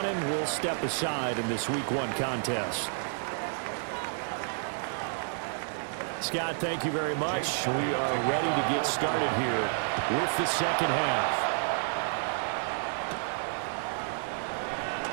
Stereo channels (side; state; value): left; silent; 58 dB below the other